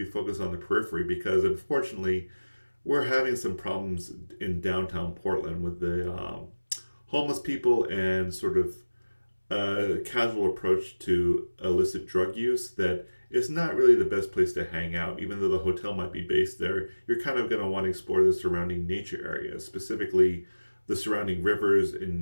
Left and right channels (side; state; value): both; inverted; correlation -1.00